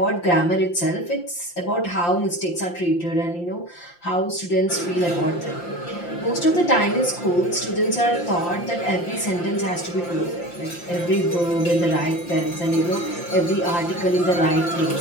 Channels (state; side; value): late; right; 5.8 ms